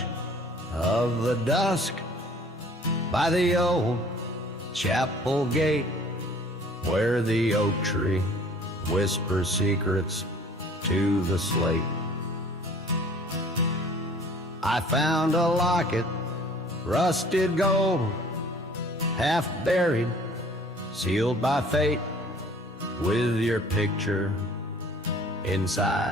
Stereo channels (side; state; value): both; normal; correlation 0.52